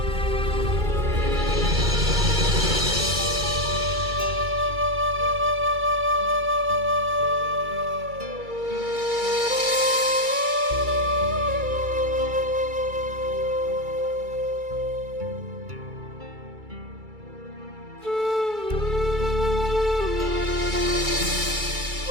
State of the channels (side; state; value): left; late; 2.3 ms